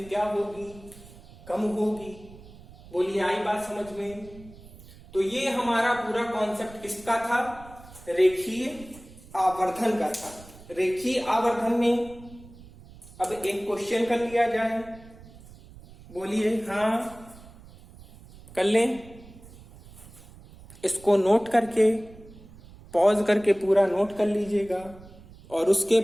क्या होगी, कम होगी। बोलिए, आई बात समझ में? तो ये हमारा पूरा कॉन्सेप्ट किसका था, रेखीय आवर्धन का था। रेखीय आवर्धन में अब एक क्वेश्चन कर लिया जाए। बोलिए, हाँ कर लें। इसको नोट करके, पॉज करके पूरा नोट कर लीजिएगा और उसके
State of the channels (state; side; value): noise; right; rumble, 20 dB below the sound